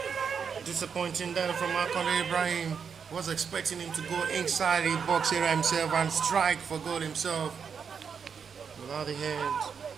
Disappointing them from Akande Ibrahim. Was expecting him to go inside the box area himself and strike for goal himself. Without the hand,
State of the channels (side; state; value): left; quieter; 6.5 dB